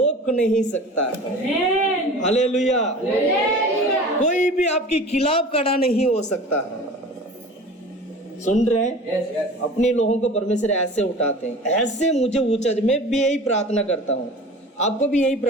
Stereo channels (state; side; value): normal; both; correlation 0.39